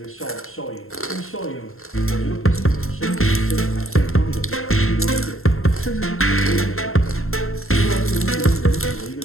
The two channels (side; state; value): right; late; 0.61 ms